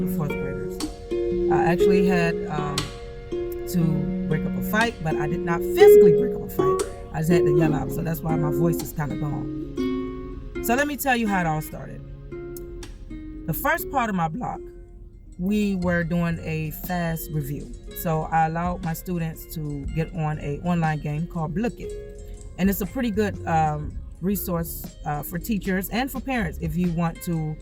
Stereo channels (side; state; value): both; identical; correlation 1.00